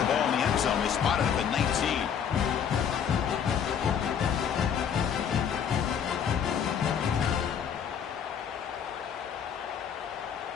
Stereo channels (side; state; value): right; quieter; 8.0 dB